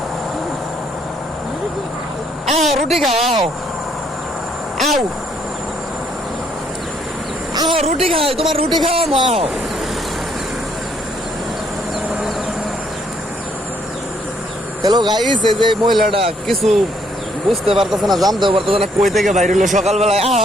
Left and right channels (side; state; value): both; normal; correlation 0.69